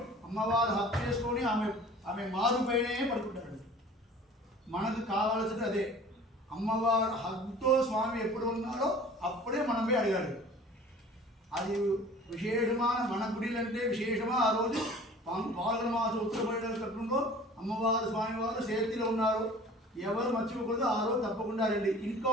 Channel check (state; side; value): normal; both; correlation 0.46